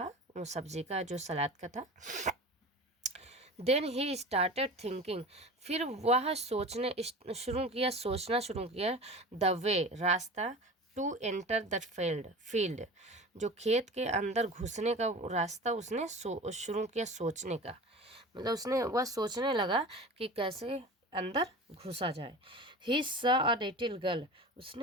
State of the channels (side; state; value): both; normal; correlation 0.35